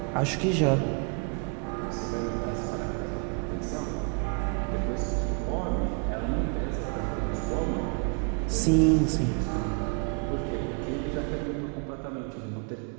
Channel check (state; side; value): quieter; left; 38.7 dB